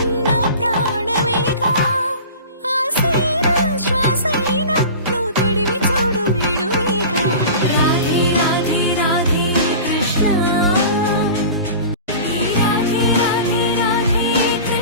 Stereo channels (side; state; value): both; inverted; correlation -0.37